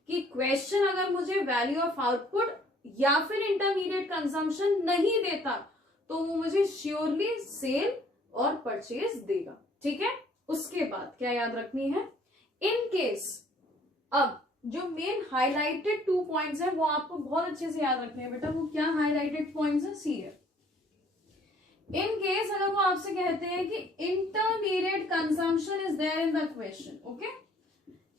कि क्वेश्चन अगर मुझे वैल्यू ऑफ आउटपुट या फिर इंटरमीडिएट कंजम्पशन नहीं देता तो वो मुझे श्योरली सेल और परचेज देगा, ठीक है। उसके बाद क्या याद रखनी है? इन केस, अब जो मेन हाईलाइटेड 2 पॉइंट्स है वो आपको बहुत अच्छे से याद रखने हैं बेटा। वो क्या हाईलाइटेड पॉइंट्स है? सी है। इन केस अगर वो आपसे कहते हैं कि intermediate consumption is there in the question, okay,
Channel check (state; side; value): normal; both; correlation 0.59